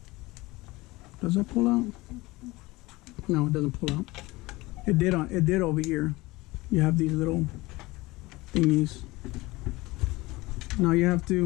Does that pull out? No, it doesn't pull out. It did over here. You have these little thingies. Now you have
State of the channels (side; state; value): right; quieter; 21.1 dB